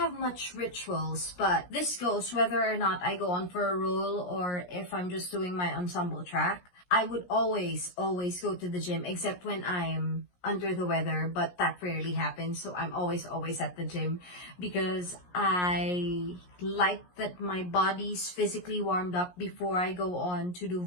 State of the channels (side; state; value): right; late; 17 ms